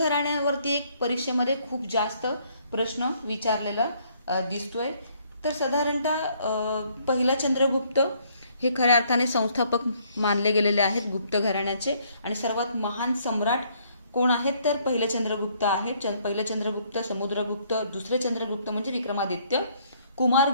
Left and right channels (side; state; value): both; inverted; correlation -0.66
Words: एक परीक्षेमध्ये खूप जास्त प्रश्न विचारलेला दिसतोय. तर साधारणतः पहिला चंद्रगुप्त हे खऱ्या अर्थाने संस्थापक मानले गेलेले आहेत गुप्त घराण्याचे. आणि सर्वात महान सम्राट कोण आहेत तर पहिले चंद्रगुप्त आहेत. पहिले चंद्रगुप्त, समुद्रगुप्त, दुसरे चंद्रगुप्त म्हणजे विक्रमादित्य,